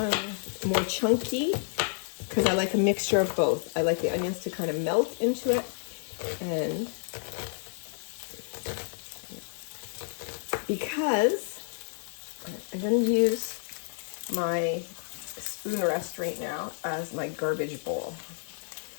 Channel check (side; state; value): right; silent; digital silence